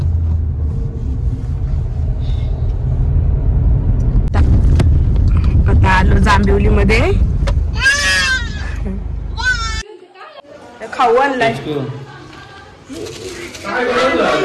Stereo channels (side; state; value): both; identical; correlation 1.00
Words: आता आलो जांभिवली मध्ये. खाऊ आणलाय.